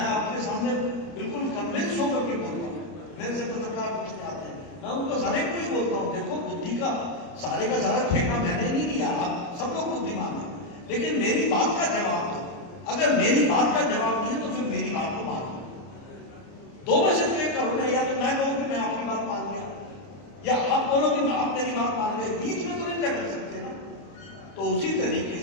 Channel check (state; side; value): late; right; 29 ms